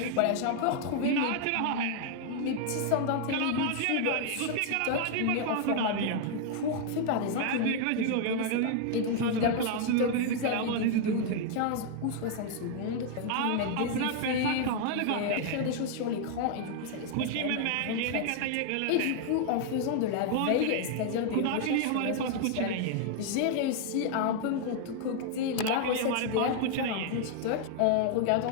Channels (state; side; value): different; both; correlation 0.00